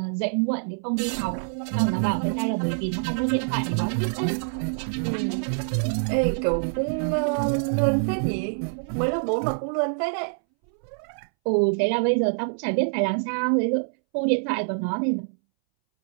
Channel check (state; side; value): silent; left; 61 dB below the other